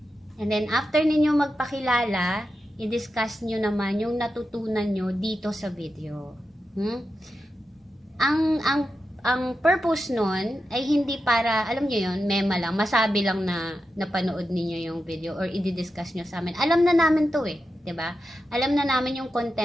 And then, after ninyo magpakilala, i-discuss nyo naman yung natutunan nyo dito sa video. Ang purpose nun ay hindi para, alam nyo yun, mema lang, masabi lang na napanood ninyo yung video or i-discuss nyo sa amin. Alam na namin to eh, 'di ba? Alam na namin yung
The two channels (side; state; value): both; normal; correlation 0.89